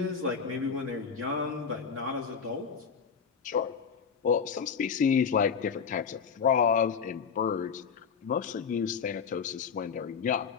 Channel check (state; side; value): quieter; right; 6.4 dB